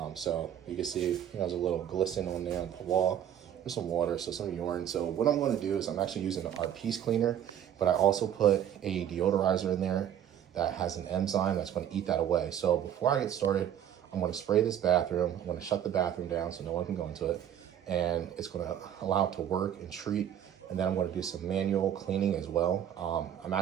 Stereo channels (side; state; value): left; quieter; 10.1 dB